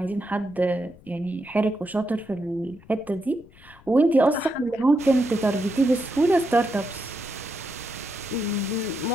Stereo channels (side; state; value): left; noise; rumble, 24 dB below the sound